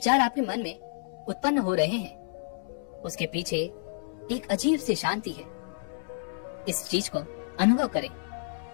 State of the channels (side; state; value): right; silent; 58 dB below the other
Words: आपके मन में उत्पन्न हो रहे हैं, उसके पीछे एक अजीब सी शांति है। इस चीज को अनुभव करें,